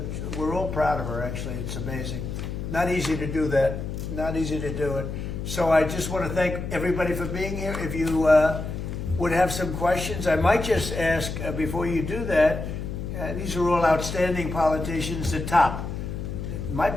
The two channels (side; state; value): left; noise; hum, 6 dB below the sound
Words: We're all proud of her, actually. It's amazing. Not easy to do that. Not easy to do it. So I just want to thank everybody for being here. If you would have some questions, I might just ask before you do that. These are all outstanding politicians, the top. In my